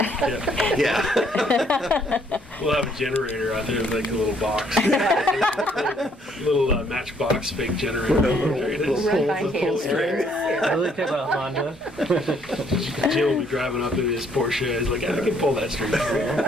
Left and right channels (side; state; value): both; normal; correlation 0.66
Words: Yeah. We'll have a generator out there, like a little box. little matchbox fake generator. There it is. Run by Pull string. I really think about Honda. Jim will be driving up in his Porsche. He's like, I can pull that string.